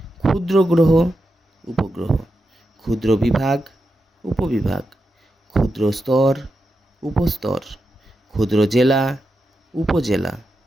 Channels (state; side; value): normal; both; correlation 0.88